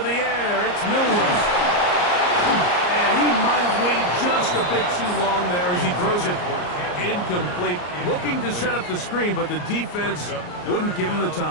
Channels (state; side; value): late; right; 34 ms